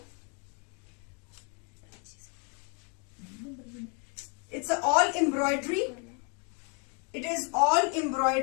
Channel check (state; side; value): quieter; right; 35.6 dB